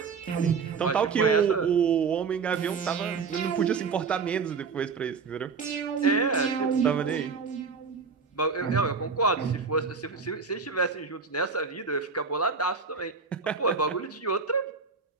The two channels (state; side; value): quieter; left; 5.2 dB